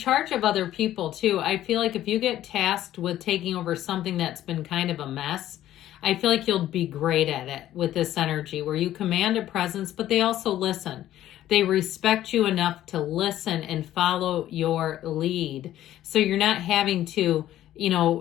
of other people too, I feel like if you get tasked with taking over something that's been kind of a mess, I feel like you'll be great at it with this energy where you command a presence, but they also listen. They respect you enough to listen and follow your lead. So you're not having to,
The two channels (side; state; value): right; quieter; 13.0 dB